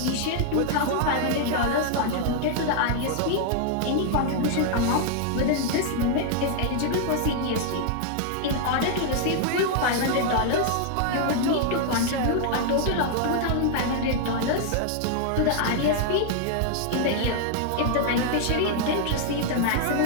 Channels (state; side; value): different; both; correlation 0.00